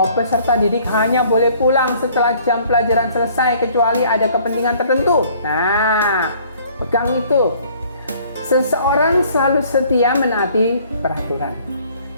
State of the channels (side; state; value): both; inverted; correlation -0.57